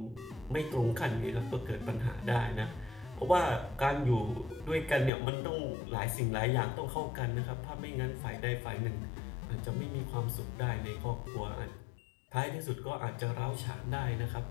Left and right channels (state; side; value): drops out; right; at 5.1 s